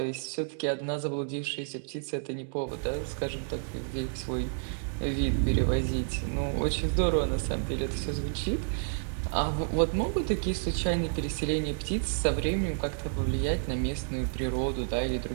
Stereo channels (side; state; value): left; silent; digital silence